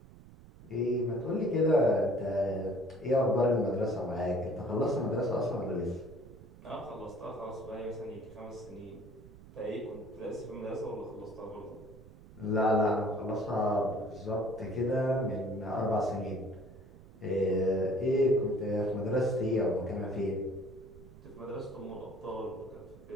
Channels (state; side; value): noise; right; rumble, 20 dB below the sound